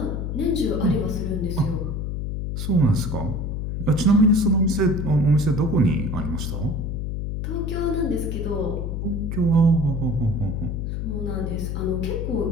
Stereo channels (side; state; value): left; noise; hum, 3 dB below the sound